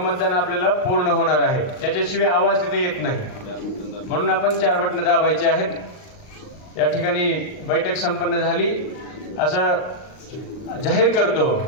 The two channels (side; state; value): right; late; 39 ms